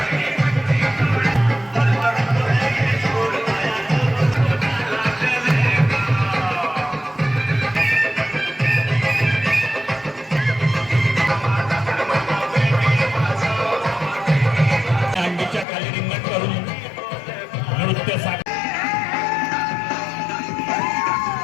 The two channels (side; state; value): right; drops out; at 15.7 s